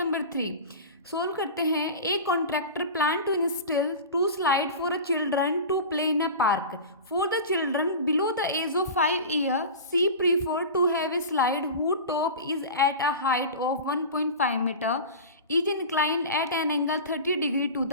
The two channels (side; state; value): both; inverted; correlation -0.31